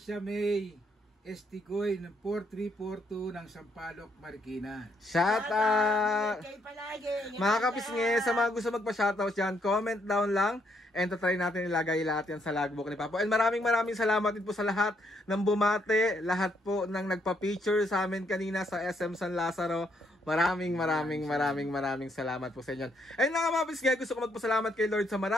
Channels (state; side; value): normal; both; correlation 0.73